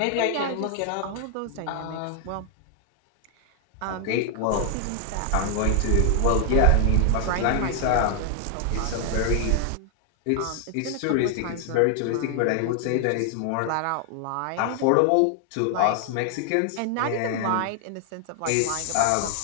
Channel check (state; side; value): different; both; correlation 0.00